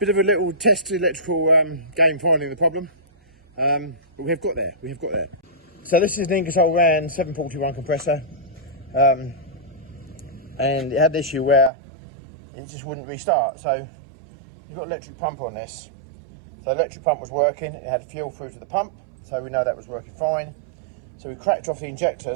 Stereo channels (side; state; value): left; drops out; at 11.7 s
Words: of a little test electrical game finding the problem, but we have got there. So this is an Ingersoll Rand 741 compressor, and it had the issue where it just wouldn't restart. So you've got electric pump on this. So electric pump was working. It had fuel through to the pump, so we know that was working fine. So we cracked off the